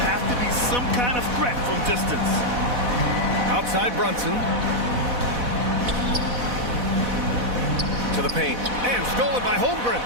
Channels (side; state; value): left; late; 4.1 ms